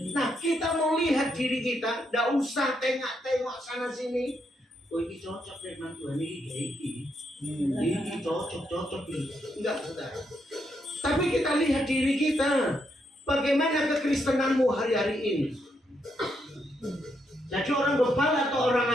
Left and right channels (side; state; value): both; normal; correlation 0.78